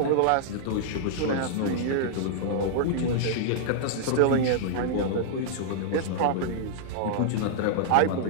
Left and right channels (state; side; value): different; both; correlation -0.01